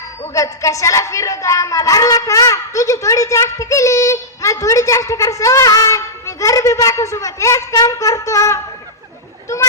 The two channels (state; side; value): normal; both; correlation -0.11